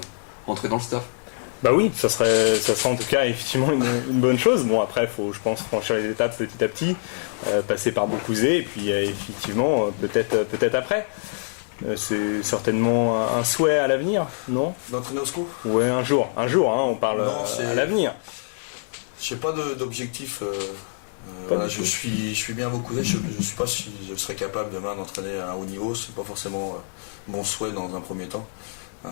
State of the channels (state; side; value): silent; right; digital silence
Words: rentrer dans le staff. Bah oui, ça serait en tout cas effectivement une bonne chose. Bon après, faut je pense franchir les étapes petit à petit, passer par Beaucouzé et puis effectivement peut-être après. C'est certainement un souhait à l'avenir, non? D'entraîner au SCO? Ouais, un jour, on parle à l'avenir. J'ai pas d'objectif. Je suis bien à Beaucouzé. Je suis pas si je serais capable demain d'entraîner à un haut niveau. C'est pas forcément mon souhait dans un premier temps.